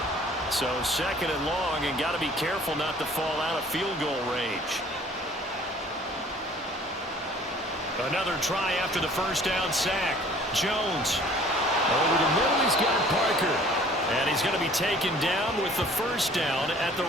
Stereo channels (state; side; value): normal; both; correlation 0.53